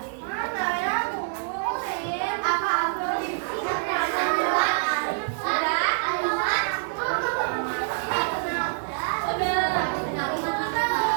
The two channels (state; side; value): silent; left; digital silence